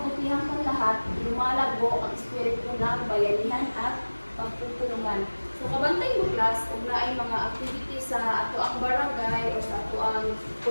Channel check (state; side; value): inverted; both; correlation -1.00